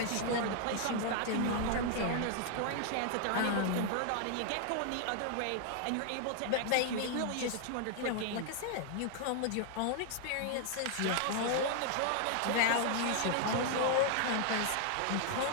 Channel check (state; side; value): different; both; correlation 0.00